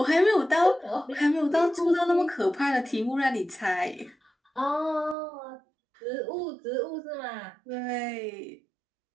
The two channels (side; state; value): left; drops out; at 5.2 s